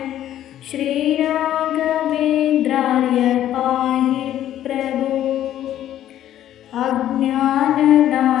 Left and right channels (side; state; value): right; quieter; 11.9 dB